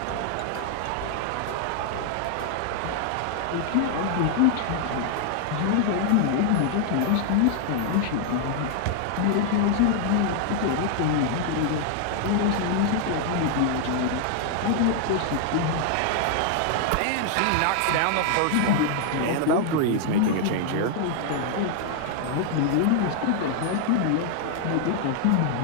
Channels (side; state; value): both; different; correlation 0.00